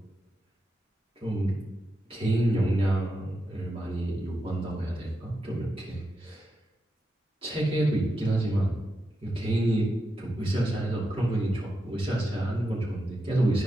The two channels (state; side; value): normal; both; correlation 0.87